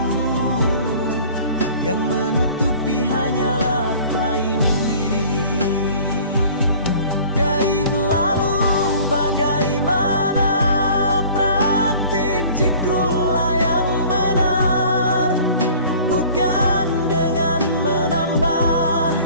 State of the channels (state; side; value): inverted; both; correlation -0.48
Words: yang menutupi hanyalah klaim diri. Gaib lalu bagaimana praktik zikrullah yang benar? Bukan dengan menambah,